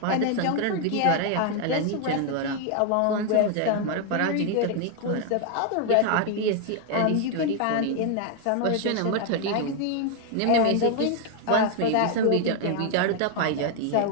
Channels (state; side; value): different; both; correlation 0.00